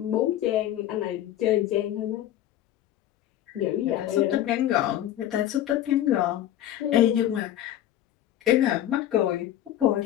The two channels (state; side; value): quieter; right; 12.3 dB